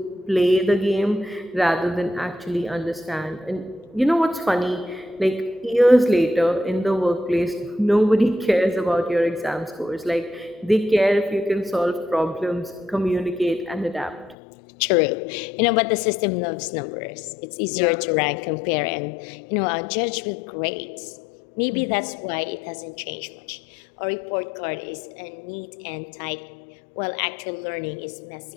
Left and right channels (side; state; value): right; drops out; at 14.4 s